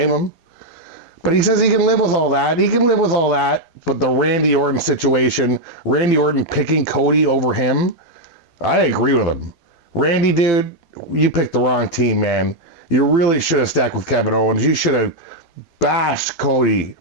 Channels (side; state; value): right; late; 12 ms